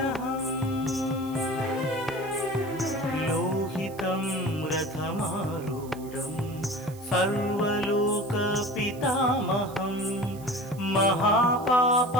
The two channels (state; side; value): noise; right; hiss, 21 dB below the sound